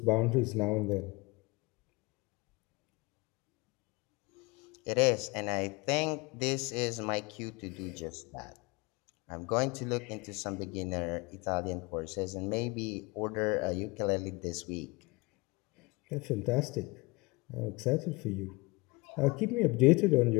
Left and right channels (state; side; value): quieter; right; 25.2 dB